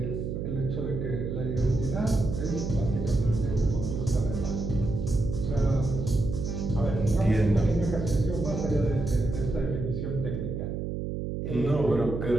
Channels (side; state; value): right; noise; hum, 3 dB below the sound